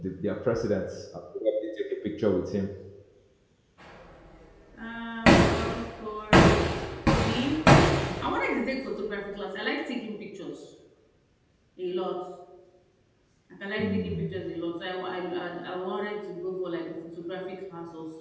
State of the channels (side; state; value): both; identical; correlation 1.00